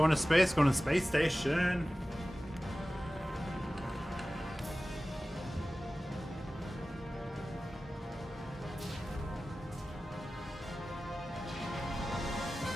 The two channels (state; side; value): normal; both; correlation 0.96